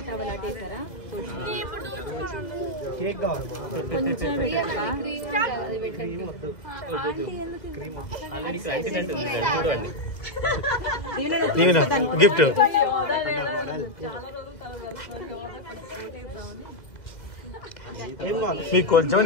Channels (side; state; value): right; late; 2.0 ms